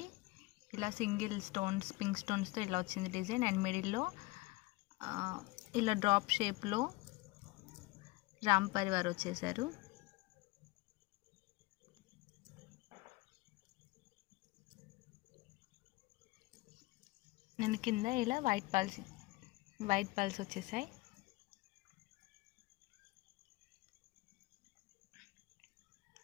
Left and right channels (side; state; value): right; quieter; 22.3 dB